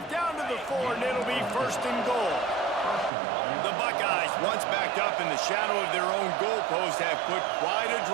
down to the 4, and it'll be first and goal. The Buckeyes, once backed up in the shadow of their own goalpost, have put quite a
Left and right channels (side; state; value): left; drops out; at 3.1 s